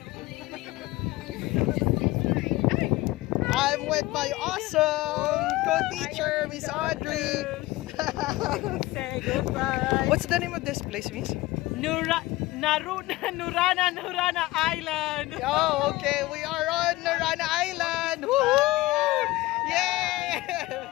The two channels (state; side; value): quieter; right; 18.9 dB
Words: I'm with my awesome co-teacher, Miss Audrey. Say goodbye. What's the name of this place, Miss? Nurana Island. Oh, okay. We are on Narana Island. Woohoo! Yay!